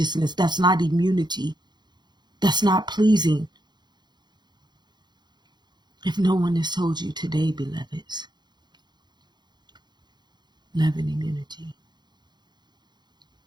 That's not immunity. That's not pleasing. If no one has told you today, beloveds, love and immunity,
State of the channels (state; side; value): late; left; 0.21 ms